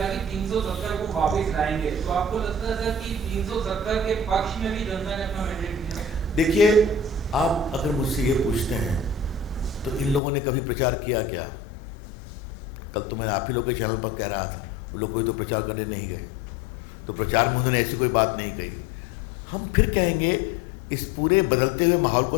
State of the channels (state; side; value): drops out; right; at 10.2 s